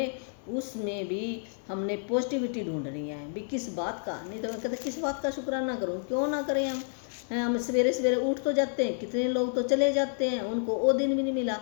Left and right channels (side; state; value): right; silent; digital silence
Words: उसमें भी हमने पॉजिटिविटी ढूंढनी है भी। किस बात का, नहीं तो मैं कहते किस बात का शुक्राना करूं, क्यों ना करें हम सवेरे सवेरे उठ तो जाते हैं, कितने लोग तो चले जाते हैं, उनको वो दिन भी नहीं मिला,